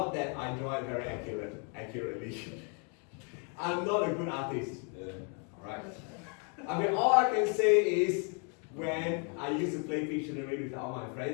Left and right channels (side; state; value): right; quieter; 38.9 dB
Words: that I draw it very accurately. I'm not a good artist. Alright. I mean, all I can say is when I used to play Pictionary with all my